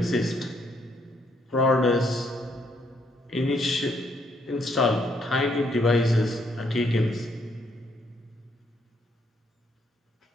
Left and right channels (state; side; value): normal; both; correlation 0.72